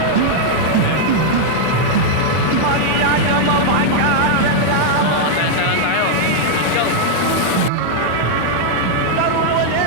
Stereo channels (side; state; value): both; different; correlation -0.01